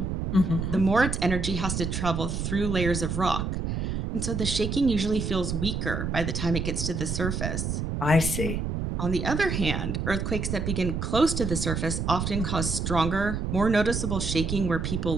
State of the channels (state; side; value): noise; right; rumble, 2 dB below the sound